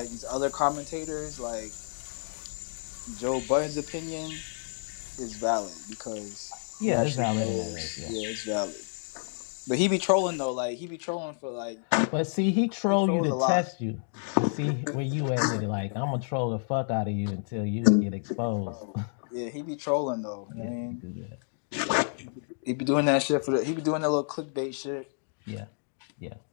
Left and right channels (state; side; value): silent; right; digital silence